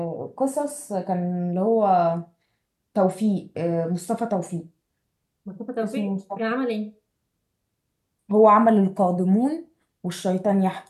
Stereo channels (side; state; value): both; identical; correlation 1.00